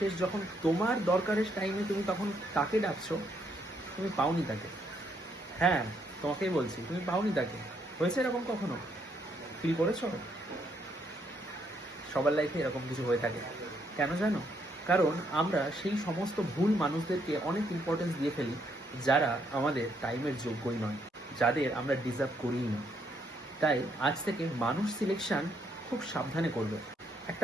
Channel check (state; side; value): normal; both; correlation 0.73